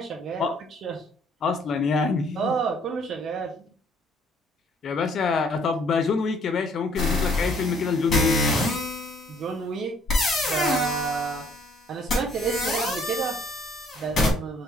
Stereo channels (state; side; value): normal; both; correlation 0.61